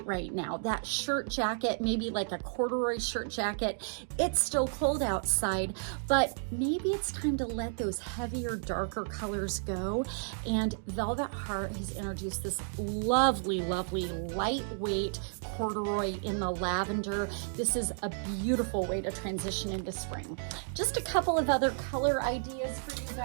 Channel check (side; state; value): left; silent; digital silence